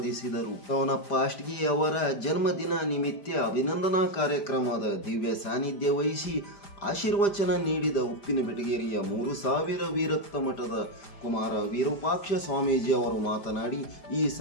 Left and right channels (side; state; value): right; late; 5.0 ms